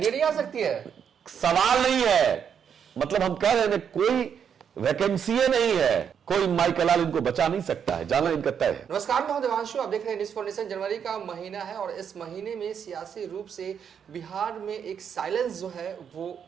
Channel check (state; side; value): quieter; left; 7.7 dB